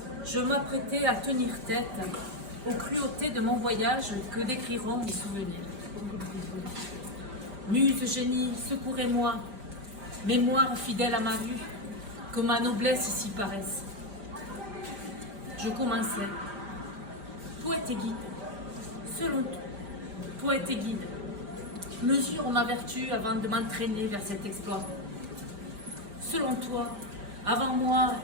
je m'apprêtais à tenir tête aux cruautés de mon voyage que décriront mes souvenirs. Muse génie, secourez-moi, mémoire fidèle à ma vue, que ma noblesse ici paraisse. Je commençais. Poète et guide, selon toi, poète et guide, mesure ma vertu avant de m'entraîner vers cet exploit. Selon toi, avant moi,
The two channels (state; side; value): late; left; 4.9 ms